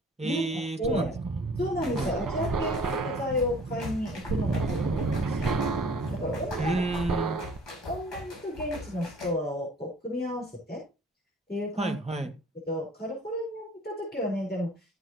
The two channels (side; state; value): both; normal; correlation 0.51